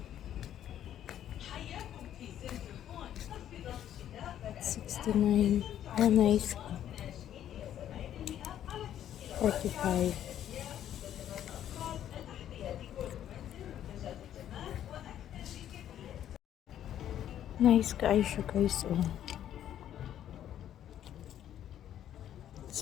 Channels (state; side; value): quieter; right; 10.9 dB